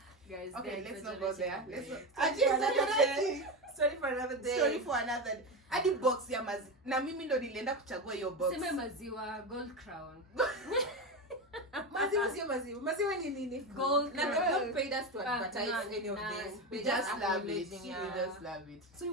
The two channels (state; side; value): normal; both; correlation 0.18